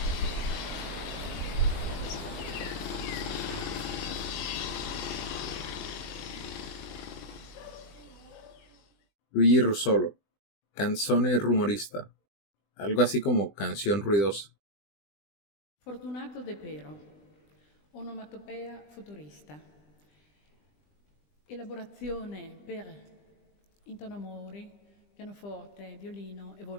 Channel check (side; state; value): right; late; 20 ms